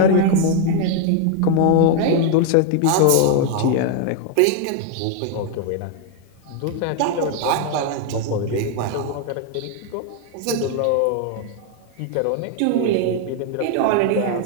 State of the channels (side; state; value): both; different; correlation 0.00